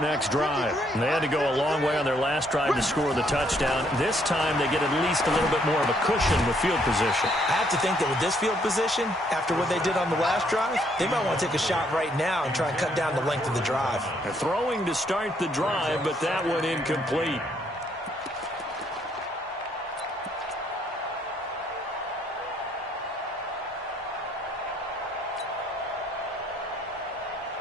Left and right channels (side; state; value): both; normal; correlation 0.69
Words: drive. They had to go a long way on their last drive to score the touchdown. This time they get at least a little bit more of a cushion with field position. I have to think that with this field position, after what they did on the last drive, they might want to take a shot right now and try and cut down the length of the drive. They're throwing to start the drive, but that one incomplete.